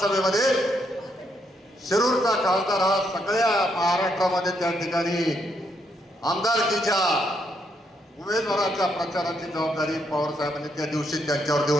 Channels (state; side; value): normal; both; correlation 0.76